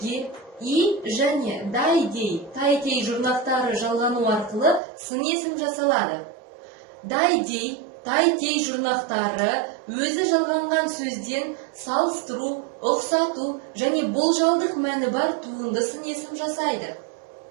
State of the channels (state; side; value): drops out; left; at 4.8 s